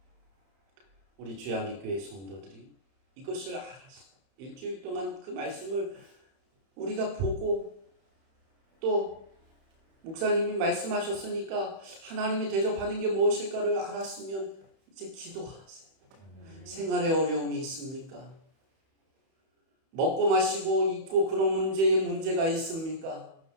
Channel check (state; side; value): late; left; 31 ms